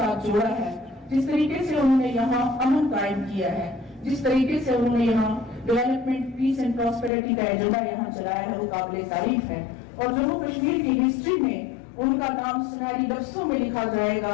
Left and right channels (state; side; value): drops out; right; at 7.1 s